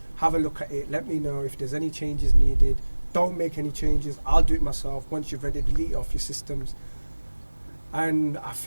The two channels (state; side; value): inverted; both; correlation -1.00